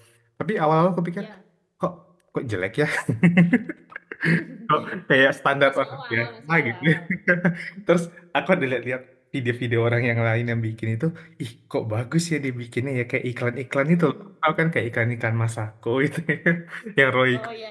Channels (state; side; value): identical; both; correlation 1.00